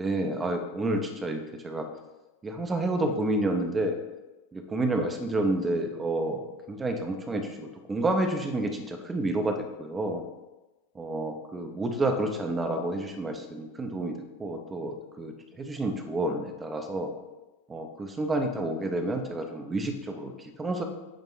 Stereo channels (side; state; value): both; normal; correlation 0.58